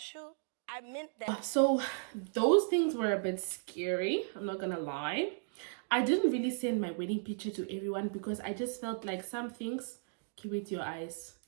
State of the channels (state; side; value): silent; left; digital silence